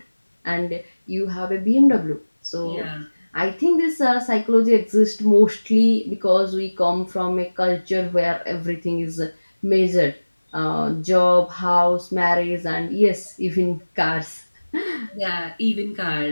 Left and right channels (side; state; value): both; inverted; correlation -1.00